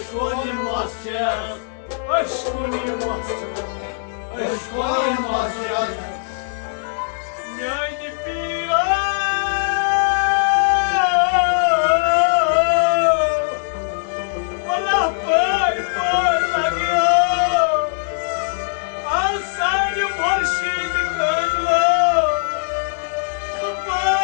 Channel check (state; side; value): silent; right; digital silence